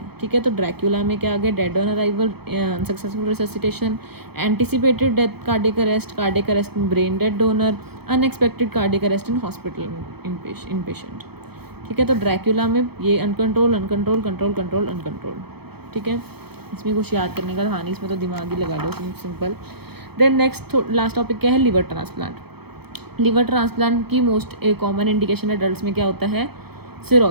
ठीक है। तो ड्रैक्यूला में क्या आ गया, dead on arrival, unsuccessful resuscitation, anticipated death cardiac arrest in brain dead donor, unexpected cardiac arrest in hospital in patient, ठीक है। तो ड्रैक्यूला में ये uncontrol uncontrol control control uncontrol, ठीक है। इसमें कुछ याद करने का था नहीं, इसमें तो दिमाग ही लगा लो, simple. Then next last topic क्या है, लिवर ट्रांसप्लांट। लिवर ट्रांसप्लांट की मोस्ट कॉमन इंडिकेशन एडल्ट्स में क्या होता है,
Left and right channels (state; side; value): late; left; 0.97 ms